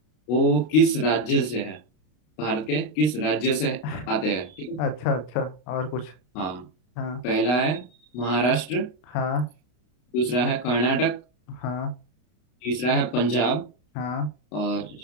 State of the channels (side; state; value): right; late; 33 ms